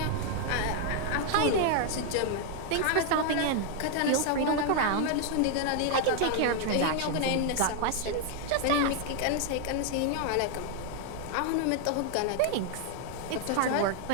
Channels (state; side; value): different; both; correlation 0.00